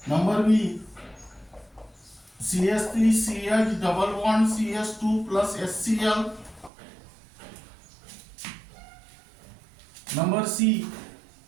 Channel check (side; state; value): left; drops out; at 6.7 s